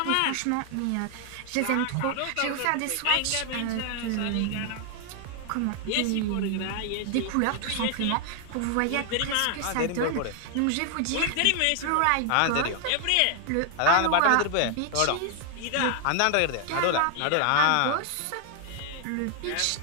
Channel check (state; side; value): different; both; correlation 0.00